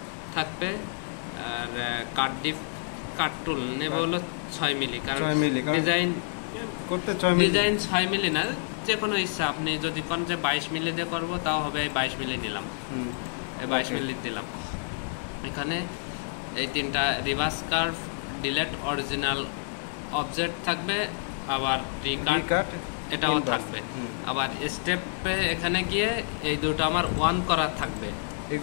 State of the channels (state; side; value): silent; right; digital silence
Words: থাকবে আর কাট টুল নেব হলো 6 মিলি, কারণ ডিজাইন করতে 6 মিলি না, যে কোনো ইচ্ছা। আপনি যদি কোন যে 22 মিলি দিয়ে করবো তাও হবে, 22 মিলি নিলাম, 22 মিলি দিলাম। এখানে এই তিনটা reverse curve, delete original object থাকবে, আবার রিকাট এটাও থাকবে। আবার স্টেপে এখানে গিয়ে এই দুটো আমার অন করা থাকবে,